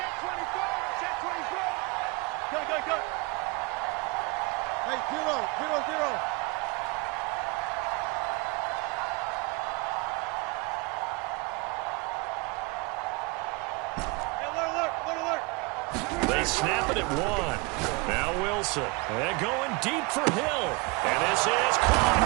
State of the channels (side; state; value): left; quieter; 26.2 dB